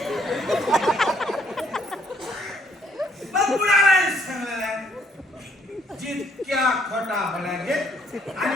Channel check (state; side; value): normal; both; correlation 0.67